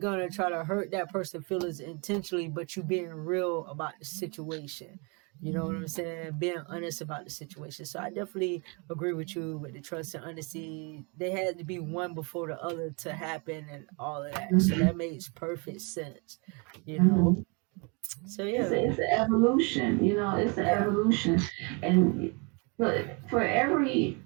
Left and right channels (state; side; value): quieter; left; 32.4 dB